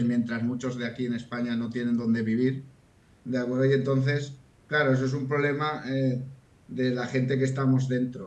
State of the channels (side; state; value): both; identical; correlation 1.00